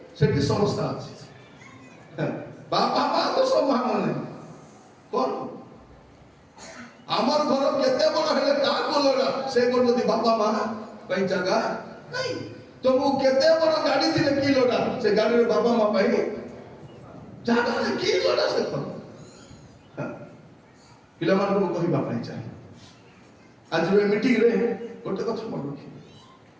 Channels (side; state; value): both; identical; correlation 1.00